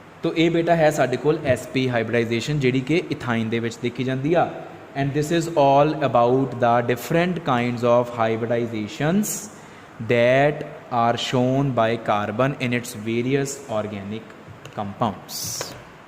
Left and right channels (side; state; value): both; identical; correlation 1.00